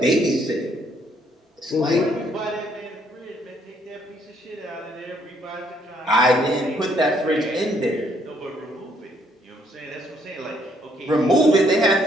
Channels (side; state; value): both; normal; correlation 0.68